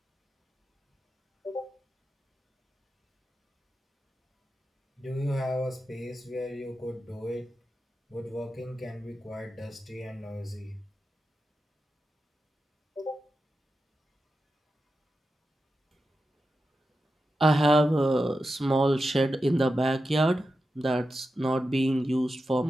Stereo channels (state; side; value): normal; both; correlation 0.90